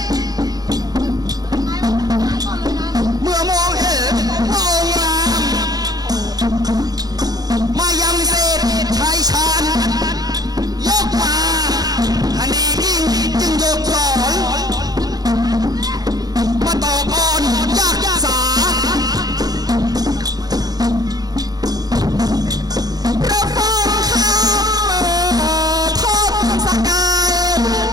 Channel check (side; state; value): left; late; 0.19 ms